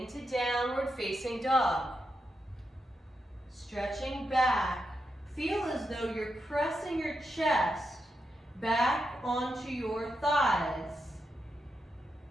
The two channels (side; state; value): both; normal; correlation 0.85